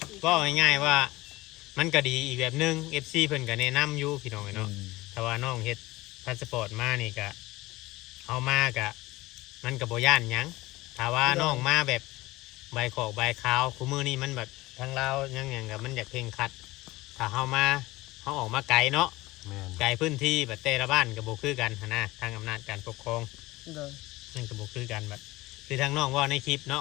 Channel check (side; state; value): right; quieter; 19.6 dB